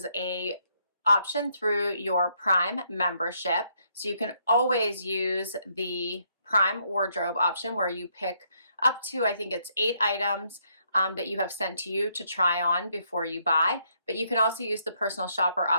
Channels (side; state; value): both; inverted; correlation -0.73